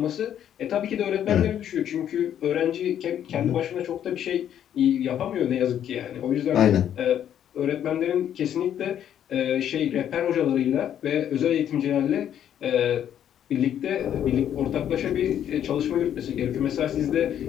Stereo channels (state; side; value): quieter; right; 10.0 dB